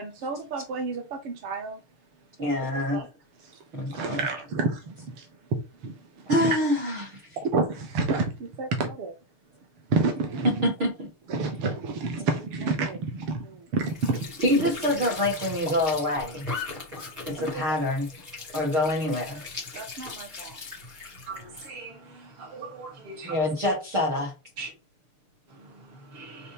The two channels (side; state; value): left; late; 6.6 ms